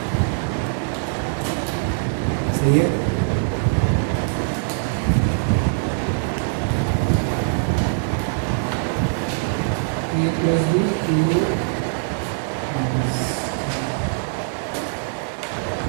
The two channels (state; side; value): silent; left; 64 dB below the other